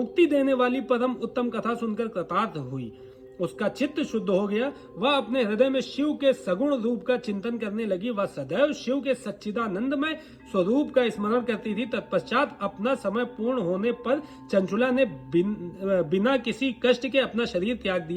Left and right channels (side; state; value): both; identical; correlation 1.00